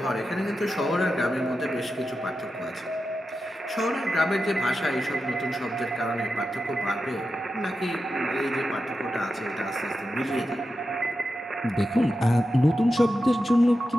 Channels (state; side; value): normal; both; correlation 0.90